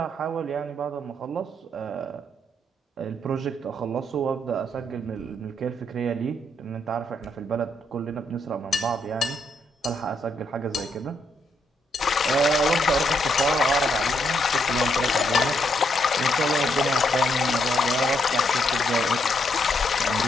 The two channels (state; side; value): normal; both; correlation 0.76